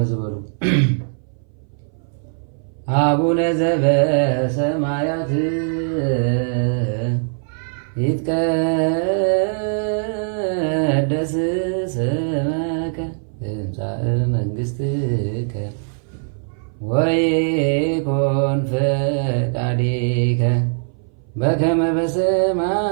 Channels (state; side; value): silent; left; 61 dB below the other